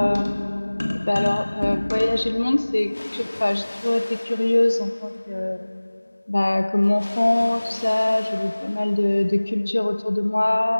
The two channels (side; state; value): both; inverted; correlation -1.00